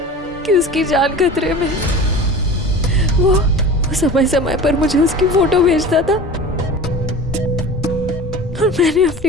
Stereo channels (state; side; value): normal; both; correlation 0.37